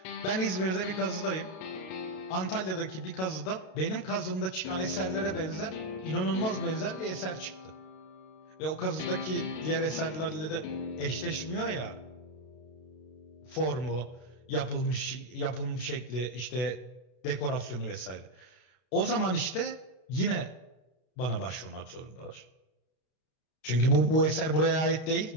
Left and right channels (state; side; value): late; right; 32 ms